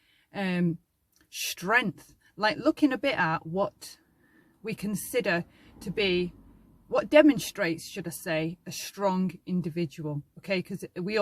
strength, like looking a bit at what we consider to be, what demonstrates, should I say, a strong individual, okay, because we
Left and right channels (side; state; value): both; identical; correlation 1.00